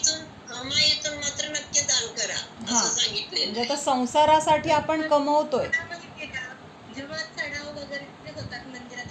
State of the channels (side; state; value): both; identical; correlation 1.00